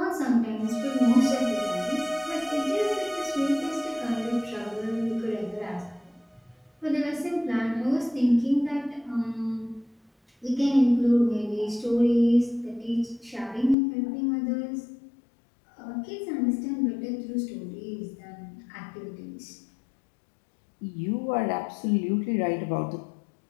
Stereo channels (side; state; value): right; drops out; at 13.8 s